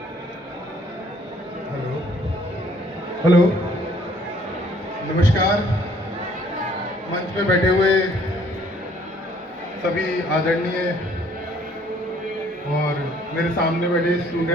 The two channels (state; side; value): normal; both; correlation 0.61